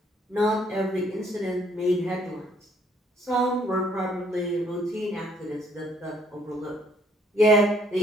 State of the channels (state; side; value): normal; both; correlation 0.65